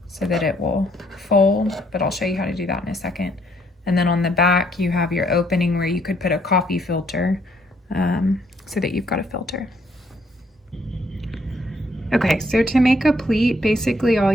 so that it will fold, but I'll show you how to do that in a second. And then on the back you have your opening where you could put a coffee filter so that you've got a filter. Okay, so to make a pleat, basically all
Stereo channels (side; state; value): both; normal; correlation 0.69